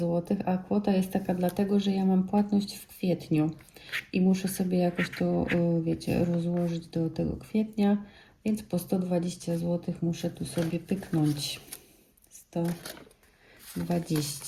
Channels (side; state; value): both; identical; correlation 1.00